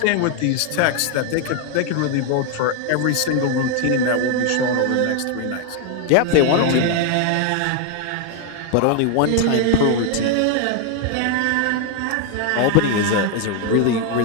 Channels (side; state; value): both; different; correlation 0.00